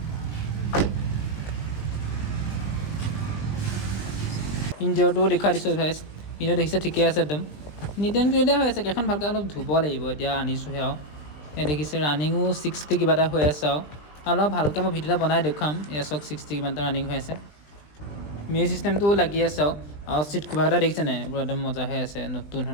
ইঞ্জিনটোও দেখুৱাই দিছোঁ গাইছ ইঞ্জিন দেখিছে ঠিকে আছে একদম নিট এণ্ড ক্লিয়াৰ হৈ আছে কেইখন ভালকৈ অলপ ধুব লাগিব এতিয়া আনিছোঁহে আৰু এই দেখিছে ৰানিঙো 60 কিবা এটা হৈ আছে আৰু অলপ ভালকৈ মই ভিডিঅ' এটা বনাই দেখুৱাম এয়া চাওক 60 কিমান এটা ৰানিং হৈ আছে মিউজিক চিষ্টেমটোও লাগি আছে আৰু চিট কভাৰকেইটা দেখিছে নাই এইবোৰ একদম মজা হৈ আছে নতুন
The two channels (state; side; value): late; right; 20 ms